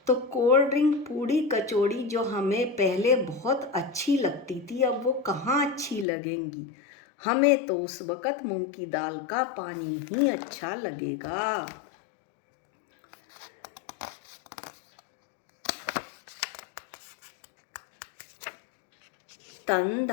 तो कोल्ड ड्रिंक पूड़ी कचौड़ी जो हमें पहले बहुत अच्छी लगती थी, अब वो कहाँ अच्छी लगेंगी। हमें तो उस वक़्त मूंग की दाल का पानी ही अच्छा लगेगा।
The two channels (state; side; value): drops out; right; at 6.1 s